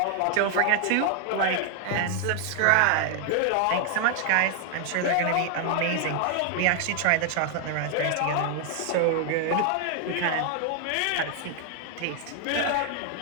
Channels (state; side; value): different; both; correlation 0.00